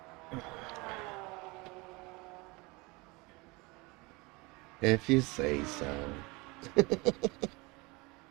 If you say so.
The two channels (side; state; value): left; quieter; 25.3 dB